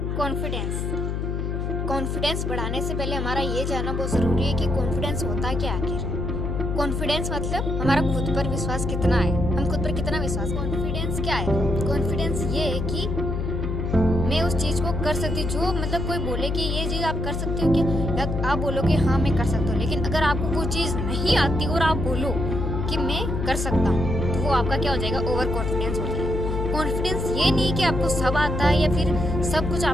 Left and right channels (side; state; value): left; noise; hum, 2 dB below the sound